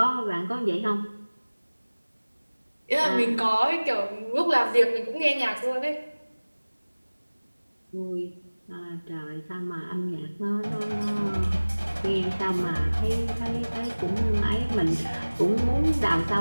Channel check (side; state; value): both; inverted; correlation -1.00